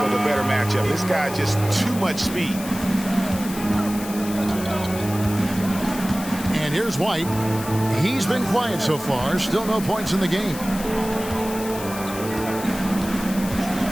with a better matchup. This guy just too much speed. And here's White. He's been quiet so far. Still no points in the game.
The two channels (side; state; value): left; noise; hiss, 12 dB below the sound